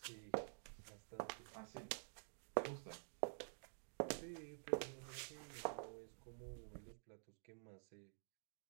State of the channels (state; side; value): silent; left; digital silence